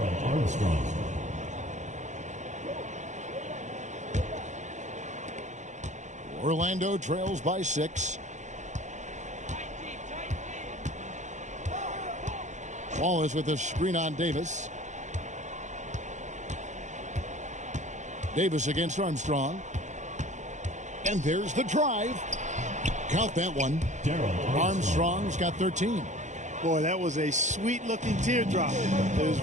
Armstrong. Orlando trails by 6. Wallace with a screen on Davis. Davis against Armstrong. And there's the drive. Count that one. Armstrong's got 13. Boy, that was a sweet-looking teardrop. There's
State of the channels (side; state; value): left; late; 0.35 ms